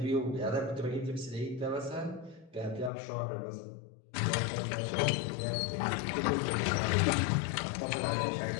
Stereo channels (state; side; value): drops out; right; at 2.9 s